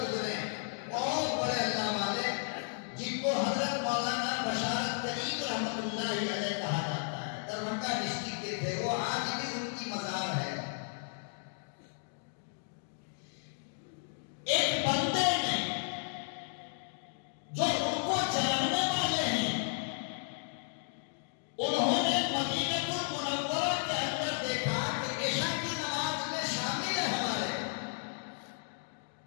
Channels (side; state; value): right; silent; digital silence